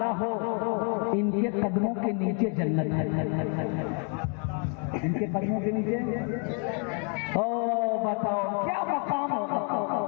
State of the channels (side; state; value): right; quieter; 39.7 dB